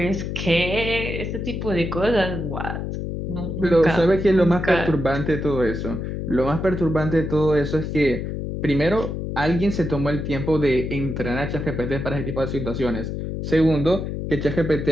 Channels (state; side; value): noise; left; hum, 4 dB below the sound